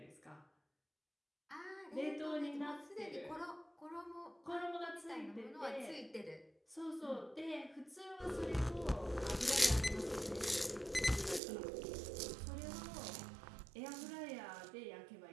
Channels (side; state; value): left; drops out; at 11.4 s